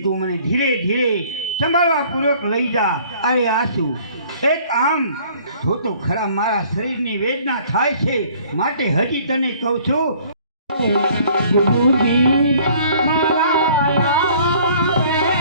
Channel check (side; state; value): both; inverted; correlation -0.55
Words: તું મને ધીરે ધીરે સંભાળવા પૂર્વક લઈ જા. અરે આસુ, એક આમ જો તો ખરા મારા શરીરની વેદના થાય છે, માટે હજી તને કહું છું. ગુરુજી